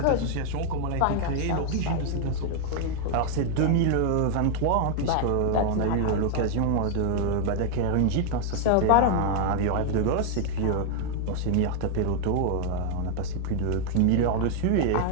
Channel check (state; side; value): different; both; correlation 0.00